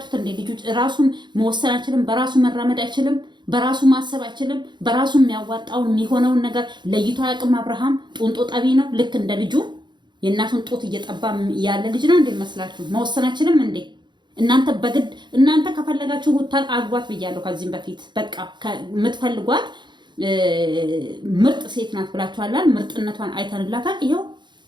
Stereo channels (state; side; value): late; left; 0.22 ms